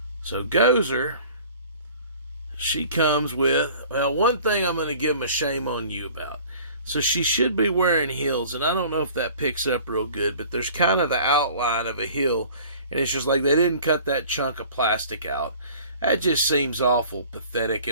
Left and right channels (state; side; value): inverted; both; correlation -0.47